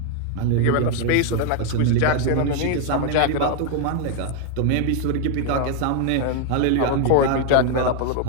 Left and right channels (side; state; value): both; different; correlation 0.00